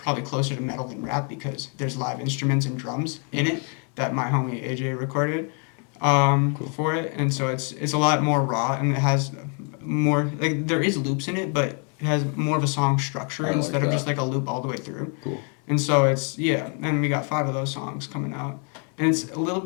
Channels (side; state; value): right; quieter; 39.7 dB